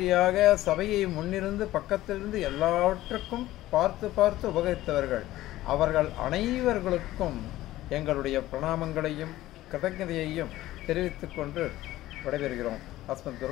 சபையை முன்னிருந்து பக்கத்திலிருந்து எல்லாவற்றுக்கும் பார்த்து பார்த்து உபகரித்தவர்கள், அவர்கள் அனைவர்களுக்கும் எங்களுடைய பிரணாமங்களையும் கிருதஜதையையும் தெரிவித்துக் கொண்டு விடைபெறுகிறோம். அஸ்மத்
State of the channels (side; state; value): right; quieter; 15.6 dB